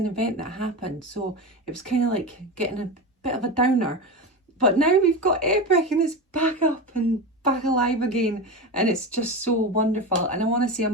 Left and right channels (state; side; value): normal; both; correlation 0.22